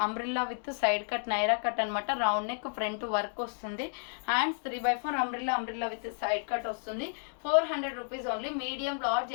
Umbrella with side cut Naira cut అనమాట. రౌండ్ నెక్, ఫ్రంట్ వర్క్ వస్తుంది. Hands 3/4 umbrella with side cut వస్తుంది. 400 rupees only. Medium large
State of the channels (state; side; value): silent; right; 57 dB below the other